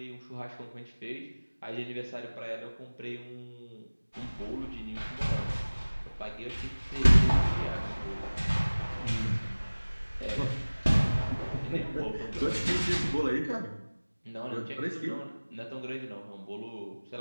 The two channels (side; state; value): both; inverted; correlation -1.00